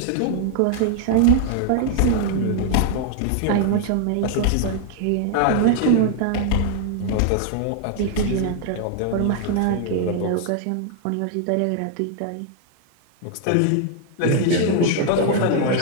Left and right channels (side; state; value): both; different; correlation 0.00